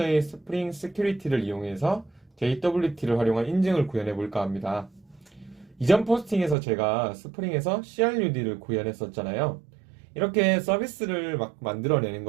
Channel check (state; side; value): drops out; left; at 6.6 s